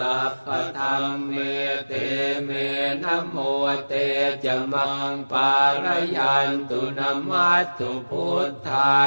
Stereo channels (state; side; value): inverted; both; correlation -1.00